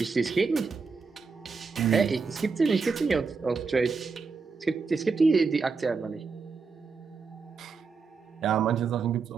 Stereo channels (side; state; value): left; quieter; 4.8 dB